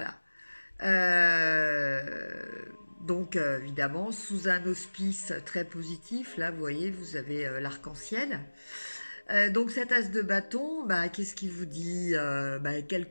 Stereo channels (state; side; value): inverted; both; correlation -1.00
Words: Donc évidemment sous un auspice très positif, là vous voyez vous avez l'arc-en-ciel. Donc cet as de bâton, bah, qu'est-ce qu'il vous dit, bah, quel